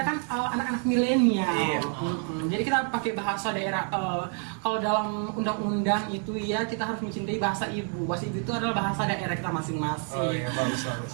kan anak-anak milenial. Iya. Jadi kita pakai bahasa daerah. Kalau dalam undang-undang itu ya kita harus mencintai bahasa ibu. Bahasa ibu itu adalah bahasa daerah kita masing-masing. bagus.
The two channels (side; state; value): left; quieter; 40.0 dB